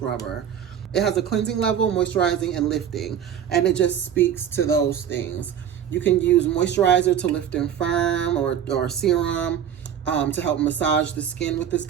It has a cleansing level, moisturizing, and lifting, and it just speaks to those things. You can use moisturizer to lift and firm, or serum to help massage the skin with this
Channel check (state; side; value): quieter; left; 9.0 dB